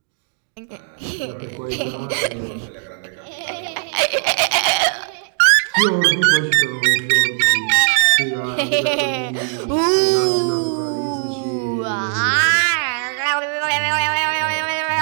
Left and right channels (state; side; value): silent; left; digital silence